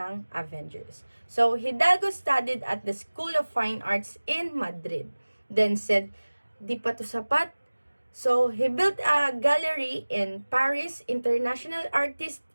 Avengers. So Hidalgo studied at the School of Fine Arts in Madrid. Then said, di pa to sapat. So he built a gallery in Paris, International Artist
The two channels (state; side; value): inverted; both; correlation -1.00